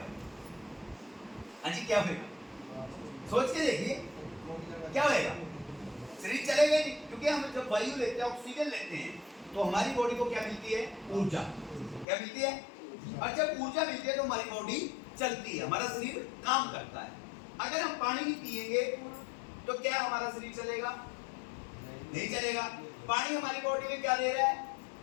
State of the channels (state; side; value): drops out; right; at 12.1 s